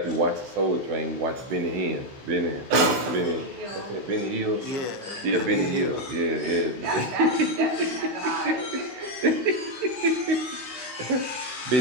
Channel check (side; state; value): left; late; 16 ms